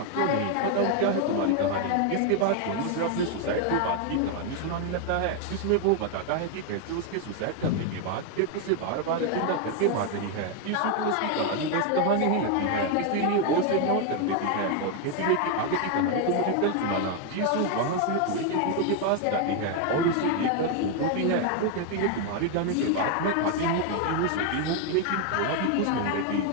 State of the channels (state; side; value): different; both; correlation 0.01